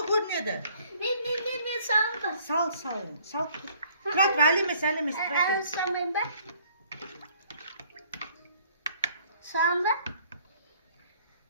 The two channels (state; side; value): inverted; both; correlation -0.60